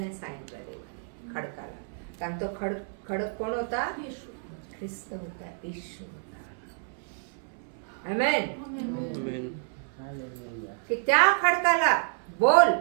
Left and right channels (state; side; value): silent; left; 58 dB below the other